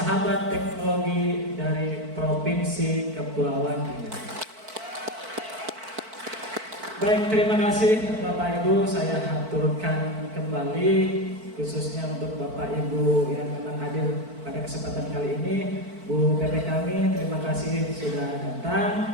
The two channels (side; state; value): left; late; 4.5 ms